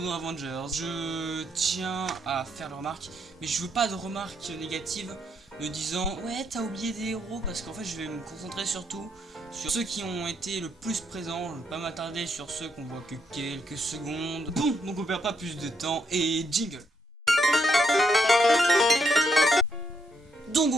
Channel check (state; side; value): normal; both; correlation 0.76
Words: dans Avengers. Je tiens à faire la remarque, mais je veux pas de remarques négatives me disant ouais t'as oublié des héros, parce qu'en fait je vais me concentrer surtout sur ceux qui ont été le plus présents. Je ne vais pas m'attarder sur ceux qu'on voit que quelques secondes. Bon, donc on perd pas plus de temps et jingle. Donc